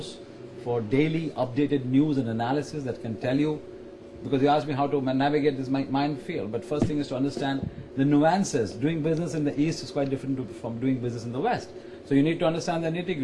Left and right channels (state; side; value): identical; both; correlation 1.00